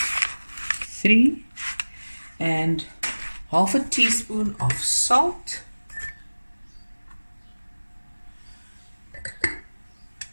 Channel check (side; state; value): both; inverted; correlation -1.00